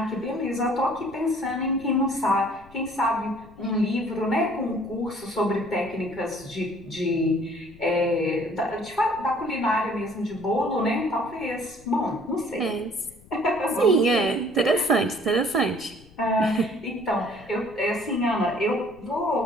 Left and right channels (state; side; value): noise; left; rumble, 23 dB below the sound